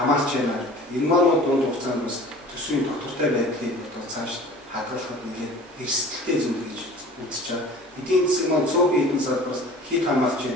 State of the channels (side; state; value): both; normal; correlation 0.44